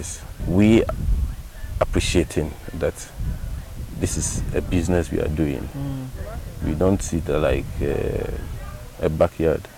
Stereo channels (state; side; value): identical; both; correlation 1.00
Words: we appreciating that this is a business we are doing. We don't see it like a backyard